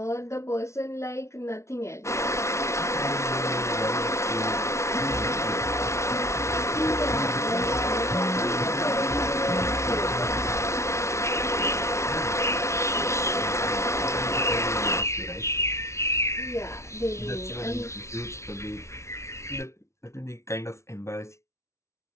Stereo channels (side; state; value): right; late; 0.13 ms